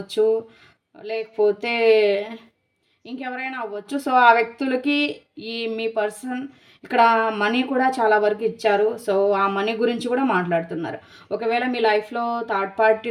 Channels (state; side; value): identical; both; correlation 1.00